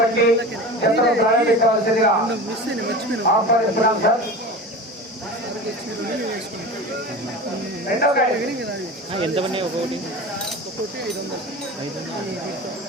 చిత్రం ప్రారంభించవలసిందిగా ఆహ్వానిస్తున్నాం సార్. రెండో ఎంత పడినాయి ఒకటి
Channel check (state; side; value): normal; both; correlation 0.32